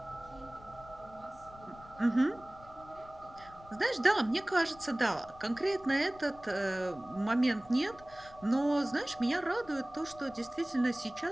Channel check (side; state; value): left; noise; rumble, 21 dB below the sound